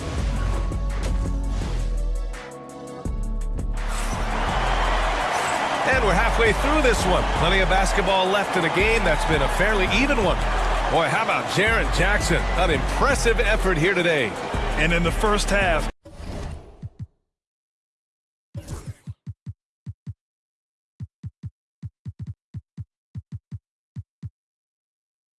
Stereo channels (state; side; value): identical; both; correlation 1.00